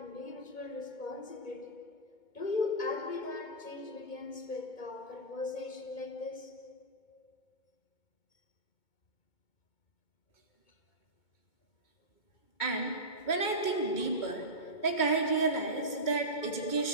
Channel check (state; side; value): late; right; 2.2 ms